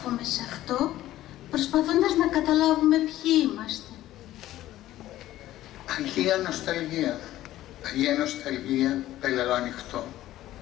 σε αυτό, προσπαθώντας να καταλάβουμε ποιοι είμαστε. Αγία νοσταλγία, Αγία νοσταλγία, πέλαλο ανοιχτό.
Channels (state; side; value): quieter; right; 14.4 dB